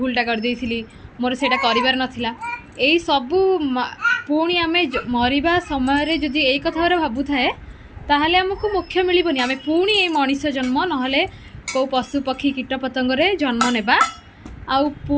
कर मोर सेटा करिवार नथिला। एई सबु पुणी आम मरवा समय जदि यही कथा भावु थाए ताहले आमको मोक्ष मिलबनी। आम पुणी ये मनीष जन्म नहले को पशु पक्षी कीट पतंगरे जन्म नेबा आउ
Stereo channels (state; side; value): identical; both; correlation 1.00